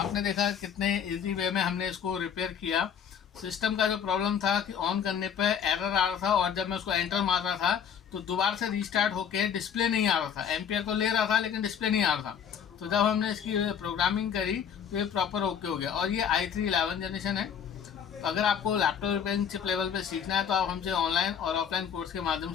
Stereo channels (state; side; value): quieter; right; 8.0 dB